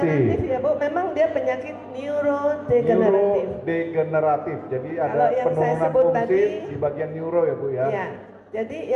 Ya Bu, memang dia penyakit neurodegeneratif. Neurodegeneratif, jadi ada Kalau yang saya penurunan sebut fungsi tadi, di bagian neuro ya Bu ya. Ya, jadi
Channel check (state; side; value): identical; both; correlation 1.00